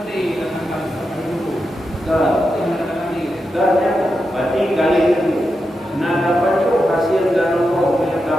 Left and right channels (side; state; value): both; normal; correlation 0.87